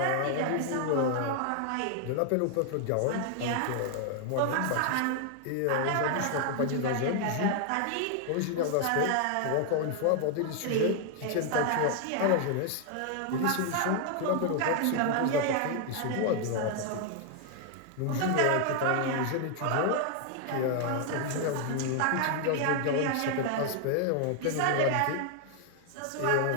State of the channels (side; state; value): both; different; correlation 0.00